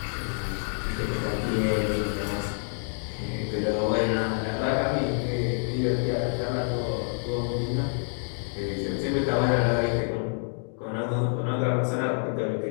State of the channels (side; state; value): right; silent; 60 dB below the other